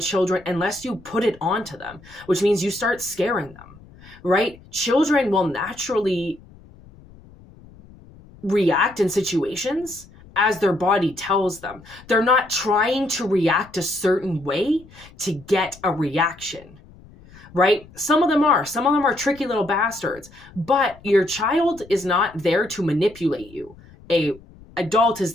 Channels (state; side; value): noise; left; rumble, 23 dB below the sound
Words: unless you put it onto them, which means you start scaring them, right? Children will naturally react in situations as their body tells them. They're not trying to react a certain way to get a reaction, right? Some of them are tricky little bastards, but your child is not there to manipulate you. A adult is